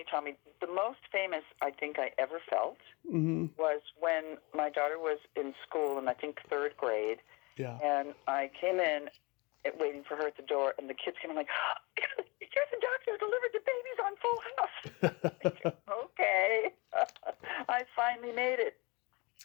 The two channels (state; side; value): quieter; right; 26.7 dB